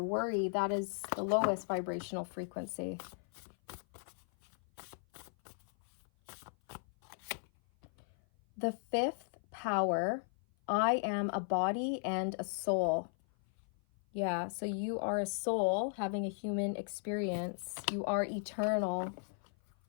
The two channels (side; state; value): right; silent; 53 dB below the other